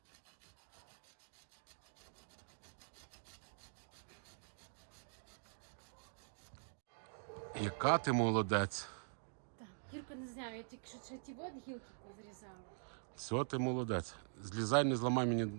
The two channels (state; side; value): silent; left; digital silence